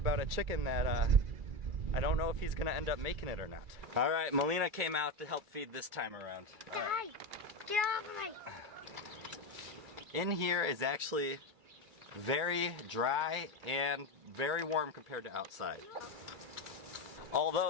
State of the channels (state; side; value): late; left; 2.3 ms